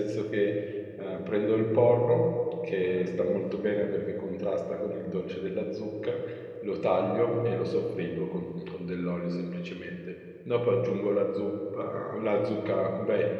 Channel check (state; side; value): identical; both; correlation 1.00